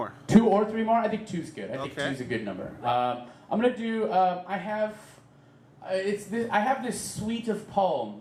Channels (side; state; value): both; identical; correlation 1.00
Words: 2 or 3 more? I think 2's good. I think Okay. 2's a good number. I'm gonna do. I have this suite of